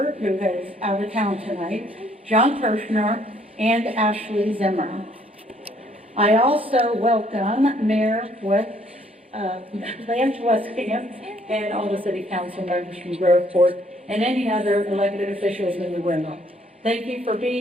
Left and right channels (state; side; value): normal; both; correlation 0.64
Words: who is out of town tonight, John Kirshner, and Ashley Zimmer. I also welcome Mayor Lance Westcamp and all the City Council members from Grove Ford and any other elected officials in the room. Thank you for